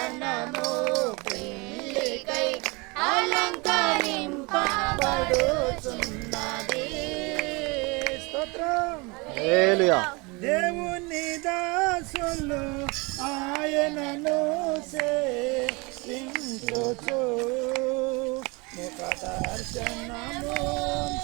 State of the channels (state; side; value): quieter; left; 27.3 dB